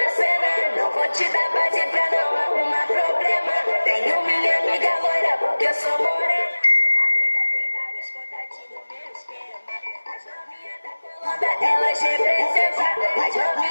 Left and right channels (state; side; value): inverted; both; correlation -1.00